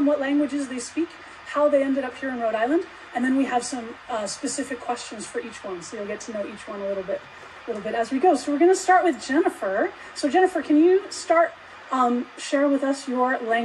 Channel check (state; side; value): identical; both; correlation 1.00